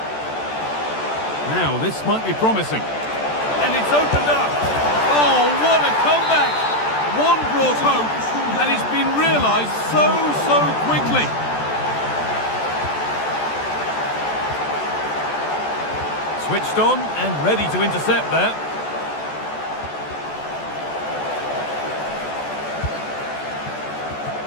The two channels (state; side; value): late; right; 14 ms